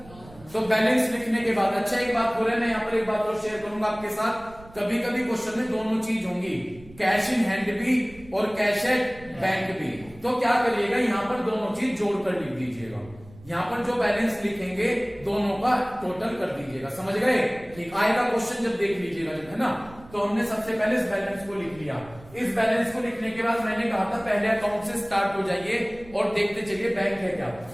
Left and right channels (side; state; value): right; noise; rumble, 22 dB below the sound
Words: तो बैलेंस लिखने के बाद, अच्छा एक बात हो रहा है, मैं यहाँ पर एक बात और शेयर करूंगा आपके साथ। कभी कभी क्वेश्चन में दोनों चीज होंगी, कैश इन हैंड भी और कैश एट बैंक भी। तो क्या करिएगा, यहाँ पर दोनों चीज जोड़कर लिख दीजिएगा। यहाँ पर जो बैलेंस लिखेंगे दोनों का टोटल कर दीजिएगा। समझ गए? ठीक। आएगा क्वेश्चन जब देख लीजिएगा, जब है ना। तो हमने सबसे पहले इस बैलेंस को लिख लिया। इस बैलेंस को लिखने के बाद मैंने कहा था पहले अकाउंट से स्टार्ट हो जाइए और देखते चलिए बैंक है क्या।